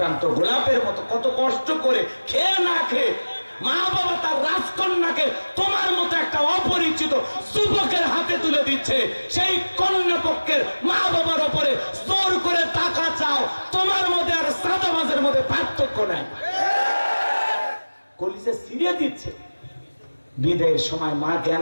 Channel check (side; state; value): both; inverted; correlation -1.00